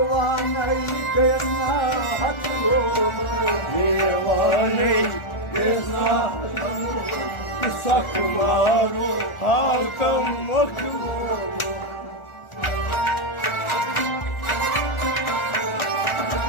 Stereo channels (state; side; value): late; right; 1.4 ms